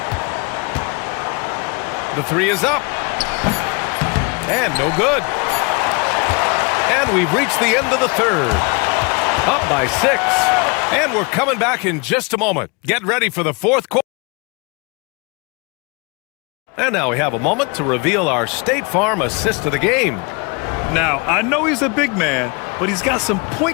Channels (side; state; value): right; quieter; 30.7 dB